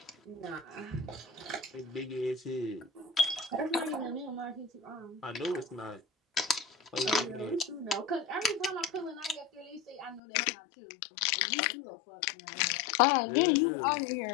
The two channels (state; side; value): drops out; right; at 10.2 s